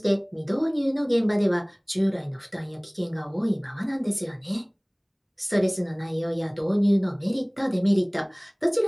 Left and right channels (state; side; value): identical; both; correlation 1.00